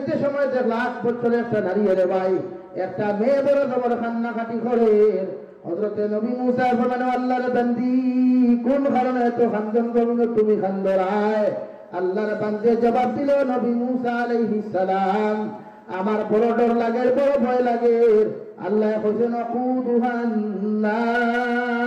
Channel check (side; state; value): both; identical; correlation 1.00